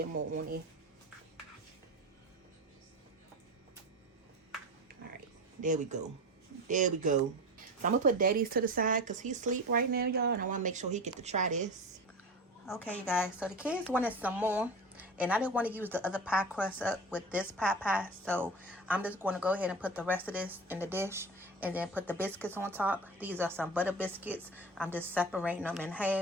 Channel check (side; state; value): both; normal; correlation 0.30